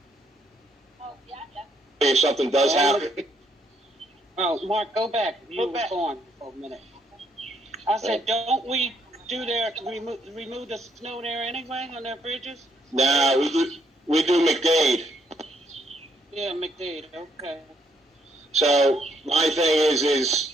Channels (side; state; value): both; normal; correlation 0.72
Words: If something does happen. Oh, Mark, go back. You were gone for a minute. I said, don't we do remove the snow there anyway on their bridges? No, we do McDade. Yeah, McDade, okay. So my thing is